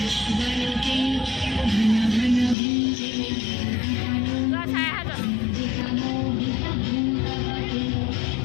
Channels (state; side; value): drops out; right; at 2.6 s